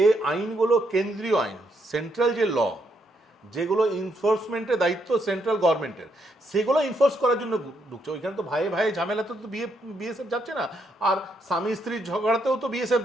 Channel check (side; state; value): both; normal; correlation 0.76